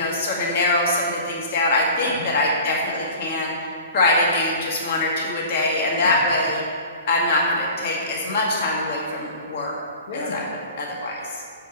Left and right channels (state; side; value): inverted; both; correlation -0.39